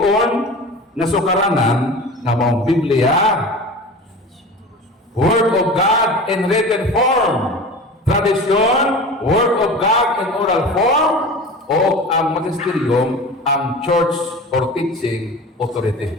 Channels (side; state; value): both; normal; correlation 0.34